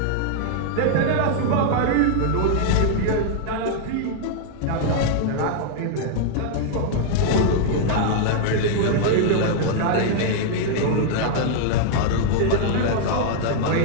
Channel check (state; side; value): different; both; correlation -0.01